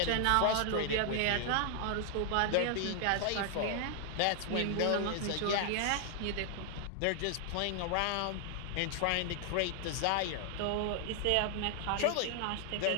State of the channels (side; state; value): both; different; correlation 0.00